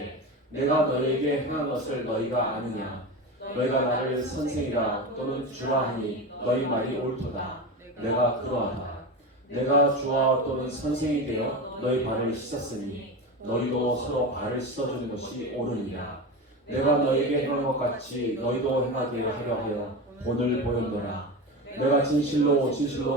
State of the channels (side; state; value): both; normal; correlation 0.24